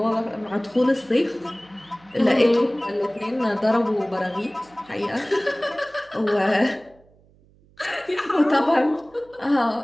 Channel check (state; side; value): noise; right; hum, 30 dB below the sound